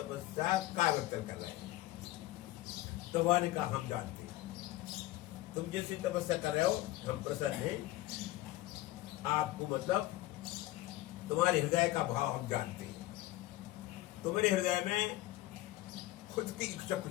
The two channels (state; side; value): quieter; right; 17.0 dB